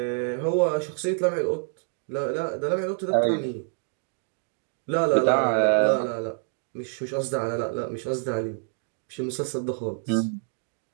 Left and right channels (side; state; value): left; silent; 60 dB below the other